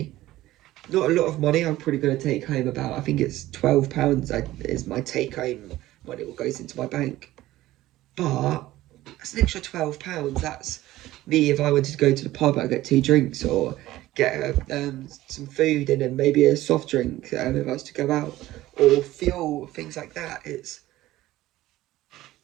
Not a lot of money. I'm probably going to take home about, I think it's £12 is my take home money, what goes into my bank. But that's an extra £12. That's me if I wanted to go to the pub. I get 2 drinks, or get some food and then maybe a soft drink if I was to go out, or fuel, things like that.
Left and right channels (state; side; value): quieter; left; 16.0 dB